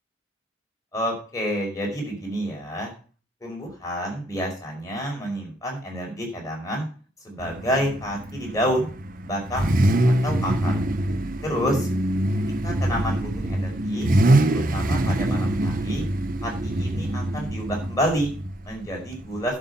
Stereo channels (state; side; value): normal; both; correlation 0.74